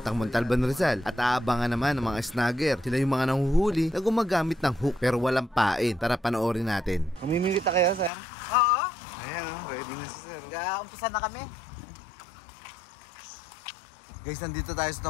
Montalban, Rizal. At aabangan naman ng mga snagger. Sila yung mga nanguhuli na gumagamit ng hook pero walang pain. Tara panoorin natin. Mamimili ta kayo, sir? Oo. Ayan o, ready na si sir. Umpisa na kami. Guys, nandito tayo sa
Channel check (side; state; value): right; drops out; at 8.1 s